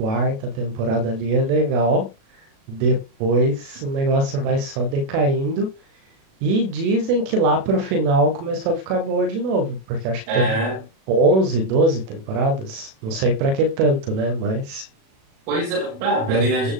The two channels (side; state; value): left; late; 36 ms